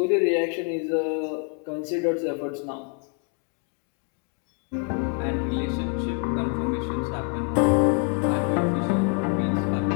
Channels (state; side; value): quieter; right; 37.9 dB